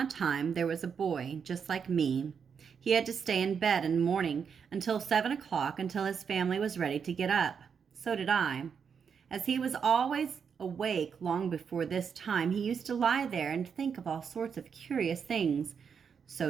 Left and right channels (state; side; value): quieter; left; 6.7 dB